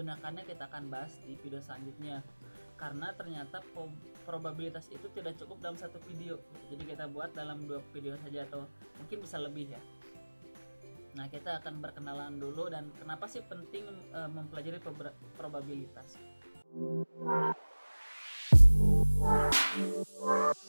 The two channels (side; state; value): both; inverted; correlation -1.00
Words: kita akan bahas di video selanjutnya. Karena ternyata probabilitas itu tidak cukup dalam satu video, jadi kita buat dalam 2 video saja atau mungkin bisa lebih ya. Nah, kita akan berkenalan dulu dan kenapa sih penting mempelajari probabilitas.